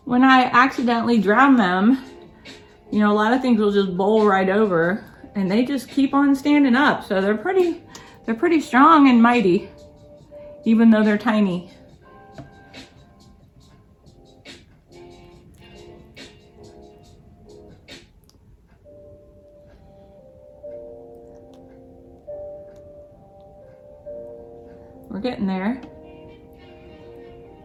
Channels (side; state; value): both; identical; correlation 1.00